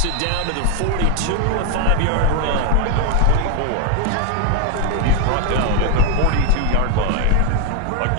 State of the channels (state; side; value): different; both; correlation 0.01